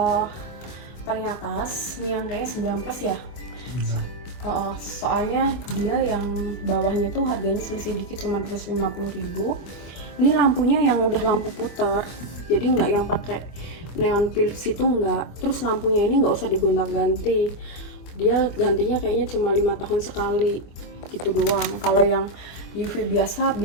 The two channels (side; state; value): right; late; 25 ms